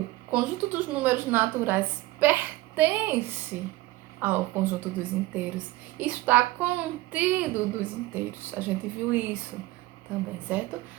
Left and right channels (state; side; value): quieter; left; 18.5 dB